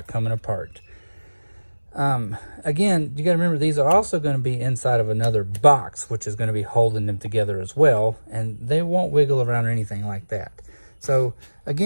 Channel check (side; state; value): both; inverted; correlation -1.00